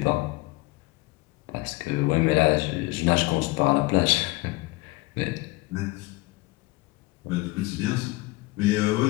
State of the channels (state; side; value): quieter; right; 21.7 dB